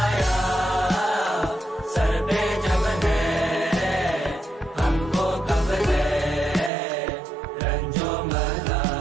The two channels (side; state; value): left; drops out; at 6.7 s